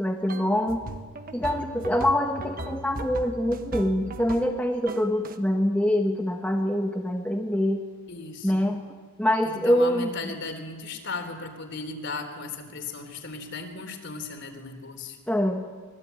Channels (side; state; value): both; normal; correlation 0.83